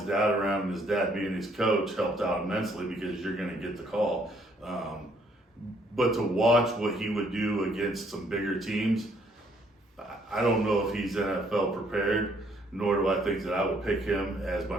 dad around and his dad being his coach helped out immensely because you're going to get the call. But to watch what he would do against some bigger teams, I don't know if he's NFL prepared, nor do I think that I would pick him as my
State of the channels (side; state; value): both; normal; correlation 0.66